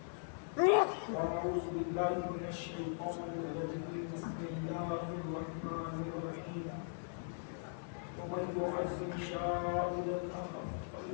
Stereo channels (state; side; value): silent; right; 52 dB below the other